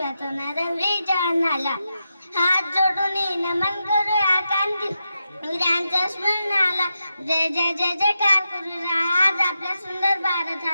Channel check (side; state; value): both; inverted; correlation -0.87